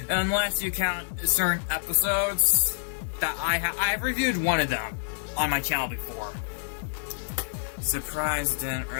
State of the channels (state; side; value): silent; right; digital silence